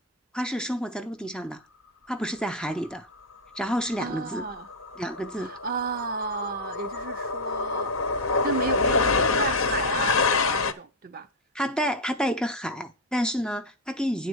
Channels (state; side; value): normal; both; correlation 0.04